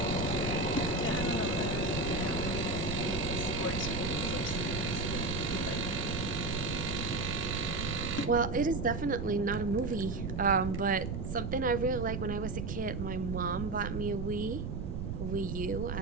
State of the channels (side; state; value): right; noise; rumble, 4 dB below the sound